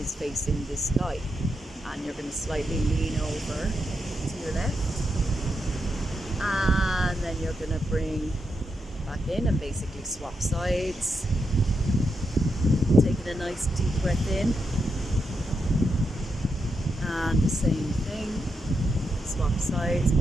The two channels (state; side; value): normal; both; correlation 0.84